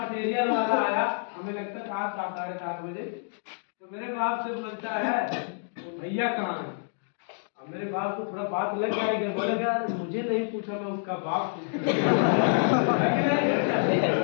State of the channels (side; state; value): right; silent; digital silence